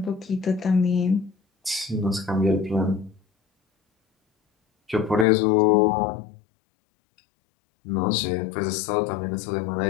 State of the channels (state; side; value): drops out; right; at 5.2 s